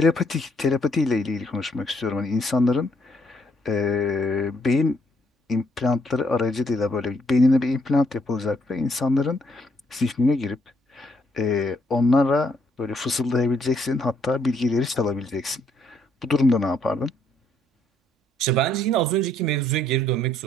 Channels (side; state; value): both; normal; correlation 0.70